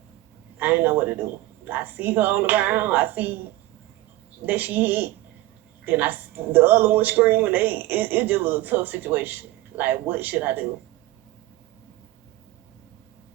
I didn't know what to do. I see her on the ground. I see that she hit. Then the other one screaming. It just was a tough situation. Like, what should I do?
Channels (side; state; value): left; quieter; 17.1 dB